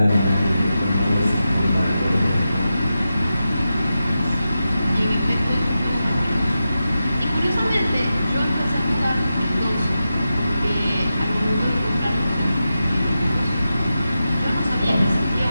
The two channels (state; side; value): inverted; both; correlation -0.91